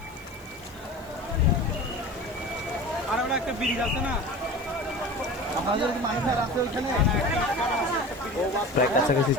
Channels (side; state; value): right; noise; hiss, 26 dB below the sound